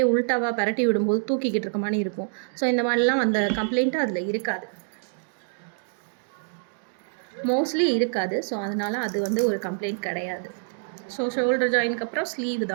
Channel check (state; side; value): silent; left; digital silence